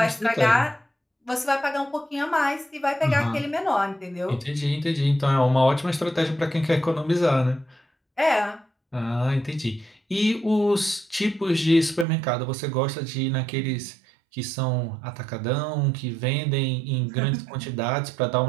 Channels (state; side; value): drops out; left; at 12.1 s